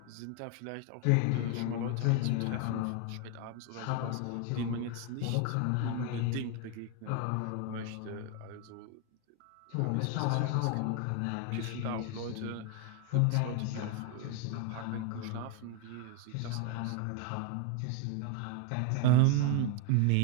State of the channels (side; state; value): both; different; correlation 0.01